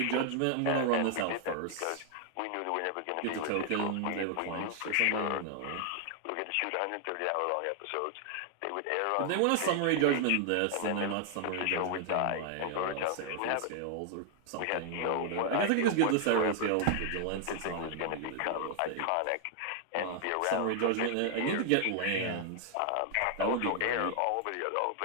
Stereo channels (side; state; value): both; different; correlation 0.00